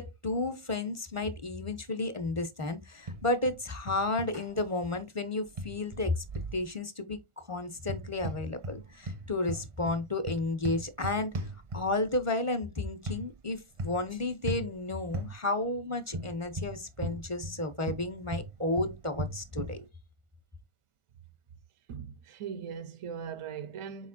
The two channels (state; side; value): late; left; 1.4 ms